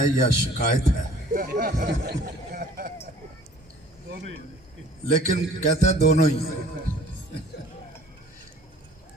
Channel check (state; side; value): normal; both; correlation 0.52